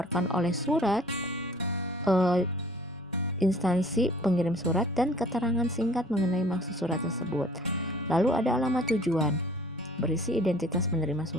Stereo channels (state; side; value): normal; both; correlation 0.52